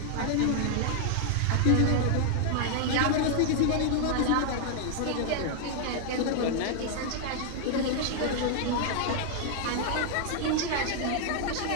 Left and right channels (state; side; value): different; both; correlation 0.00